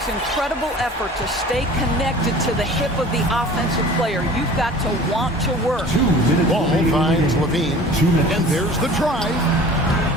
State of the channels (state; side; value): normal; both; correlation 0.43